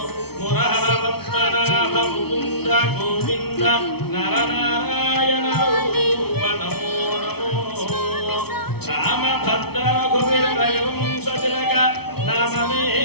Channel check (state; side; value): late; right; 0.97 ms